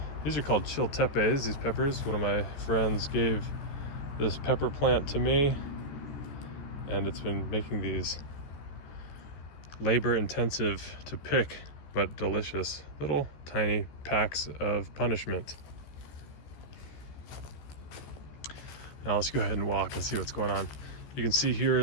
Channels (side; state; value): right; late; 14 ms